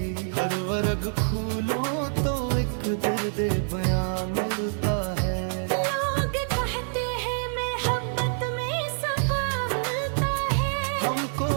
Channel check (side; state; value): left; silent; 59 dB below the other